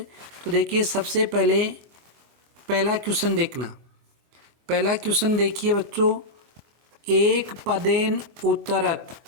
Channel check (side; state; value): left; late; 24 ms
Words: तो देखिए, सबसे पहले पहला क्वेश्चन देखना। पहला क्वेश्चन देखिए बच्चों, एक पदेन उत्तरत,